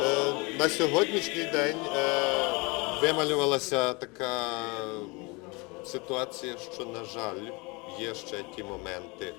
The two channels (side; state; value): right; quieter; 27.3 dB